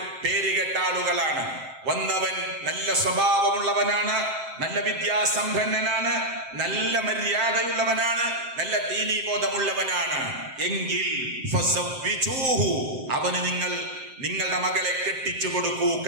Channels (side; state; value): left; late; 7.6 ms